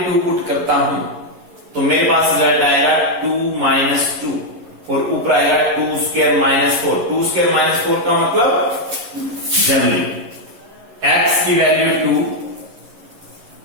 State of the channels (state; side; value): late; left; 11 ms